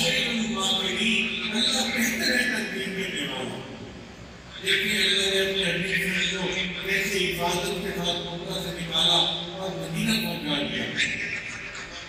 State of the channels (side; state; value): both; identical; correlation 1.00